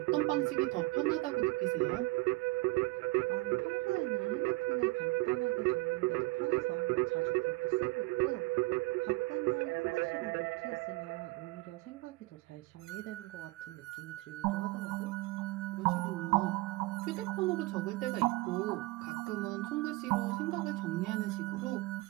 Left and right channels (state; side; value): quieter; left; 22.0 dB